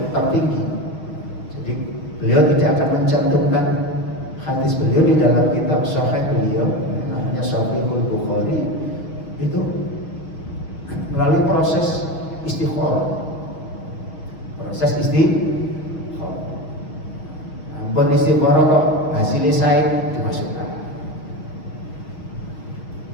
tertinggi. Jadi beliau tidak akan mencantumkan hadis beliau di dalam kitab sahih beliau, namanya Sahihul Bukhari, itu melalui proses istikharah. Proses istikharah. Ampun istikharah kok hasilnya saya dimasukkan.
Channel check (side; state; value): right; late; 6.3 ms